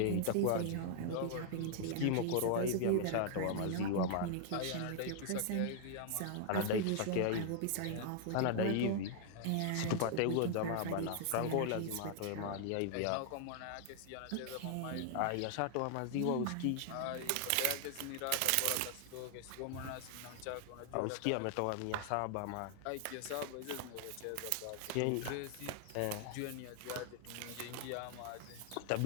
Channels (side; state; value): both; different; correlation 0.00